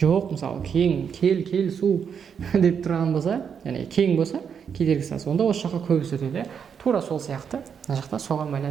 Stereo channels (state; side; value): quieter; left; 7.2 dB